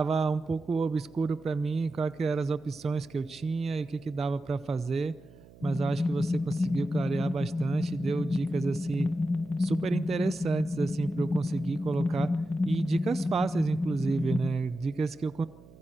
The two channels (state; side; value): noise; right; hum, 23 dB below the sound